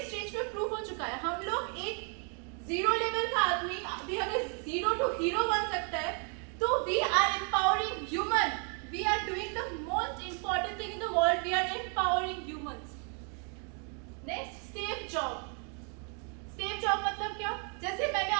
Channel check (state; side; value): quieter; left; 39.7 dB